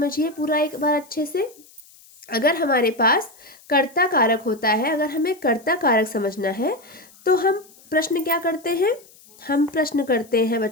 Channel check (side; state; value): left; noise; hiss, 26 dB below the sound